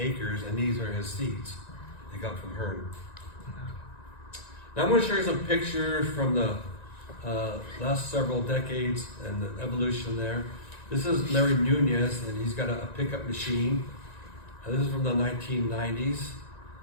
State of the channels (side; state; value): right; late; 1.9 ms